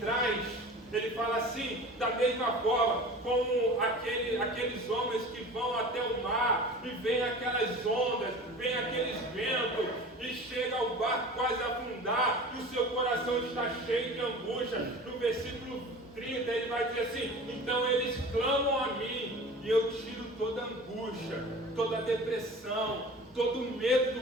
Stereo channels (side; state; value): both; normal; correlation 0.38